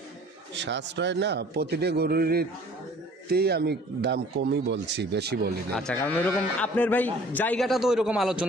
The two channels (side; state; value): both; normal; correlation 0.51